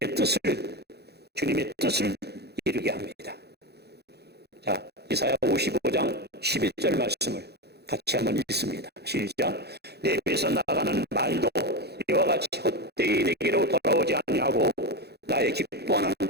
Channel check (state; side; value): late; left; 0.48 ms